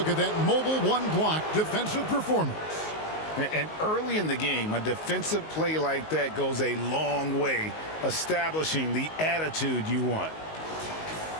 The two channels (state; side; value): late; right; 19 ms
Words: at that mobile one-block defensive performance. And early in the game, a defensive play like that goes a long way, establishing the attitude you want.